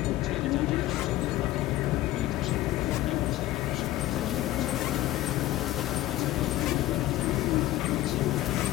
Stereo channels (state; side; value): quieter; right; 15.4 dB